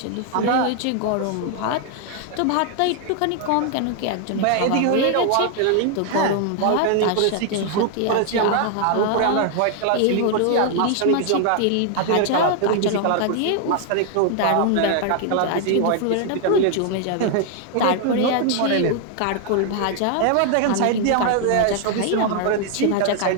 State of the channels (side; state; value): both; different; correlation 0.00